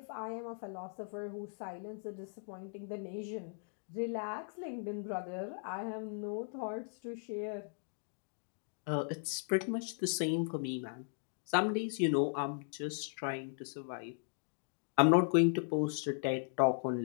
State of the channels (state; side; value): silent; right; digital silence